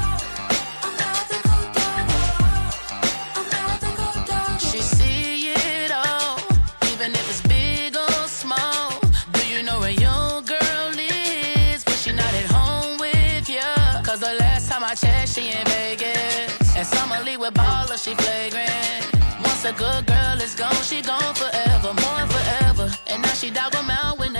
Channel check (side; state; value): both; inverted; correlation -1.00